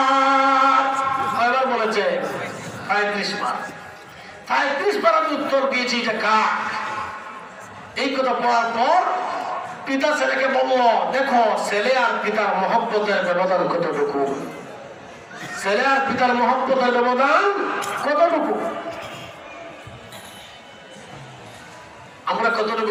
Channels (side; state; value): both; identical; correlation 1.00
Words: কয়বার বলেছে? 35 বার। 35 বার আমি উত্তর দিয়েছি এটা কাক। এই কথা বলার পর পিতা ছেলেকে বলল, দেখো ছেলে আর পিতার মহব্বতের ব্যবধান কতটুকু, ছেলে আর পিতার মহব্বতের ব্যবধান কতটুকু। আমরা